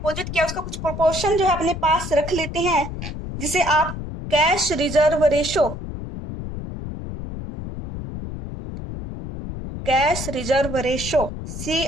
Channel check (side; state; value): left; noise; rumble, 8 dB below the sound